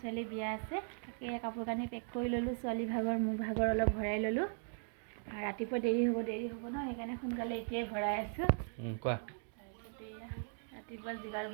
ছোৱালী বিয়া আছে তাকে কাপোৰ কানি পেক কৰি ল'লোঁ ছোৱালী ভাগৰ মোৰ ভাগৰ অলপ ভৰাই ল'লোঁ আৰু ৰাতিপুৱা দেৰি হ'ব ন সেইকাৰণে সোনকালে এতিয়াই ভৰাই আছোঁ কোৱা তাৰপিছতে ৰাতিপুৱা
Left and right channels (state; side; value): silent; left; 52 dB below the other